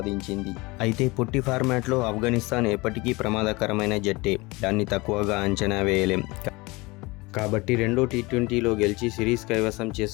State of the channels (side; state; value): right; quieter; 23.7 dB